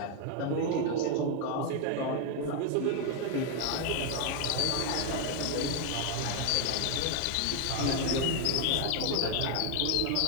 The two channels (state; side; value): different; both; correlation 0.00